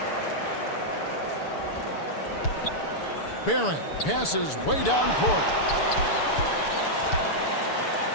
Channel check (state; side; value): late; right; 6.8 ms